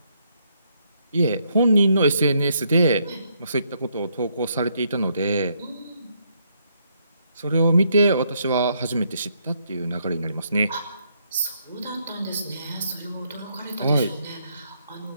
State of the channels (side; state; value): both; inverted; correlation -0.74